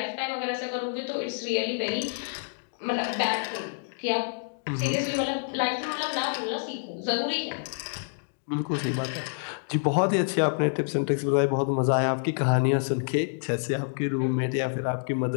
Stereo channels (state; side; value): silent; right; digital silence